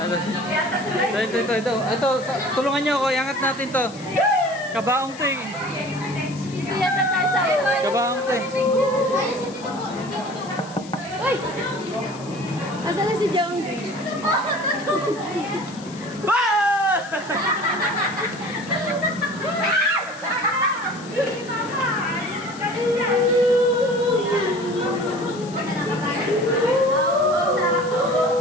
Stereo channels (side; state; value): left; noise; hiss, 19 dB below the sound